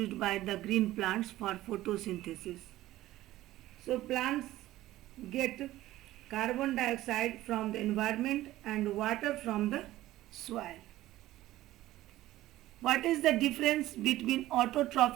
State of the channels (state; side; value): quieter; left; 15.5 dB